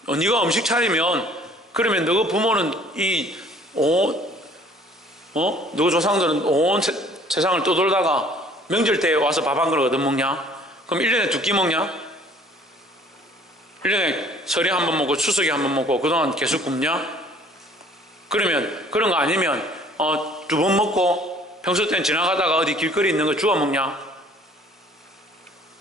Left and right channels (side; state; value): both; normal; correlation 0.54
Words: 네가 음식 차리면, 그러면 너 부모는 너 조상들은 온 세상을 떠돌다가 명절 때 와서 밥 한 그릇 얻어먹냐? 그럼 1년에 2끼 먹냐? 1년에 설에 한 번 먹고 추석에 한 번 먹고 그동안 계속 굶냐? 그러면 그런 거 아니면 2번 먹고 평소 때는 지나가다가 어디 길거리 있는 거 주워 먹냐?